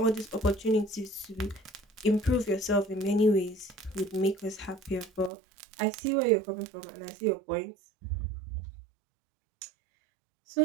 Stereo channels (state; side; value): drops out; left; at 5.3 s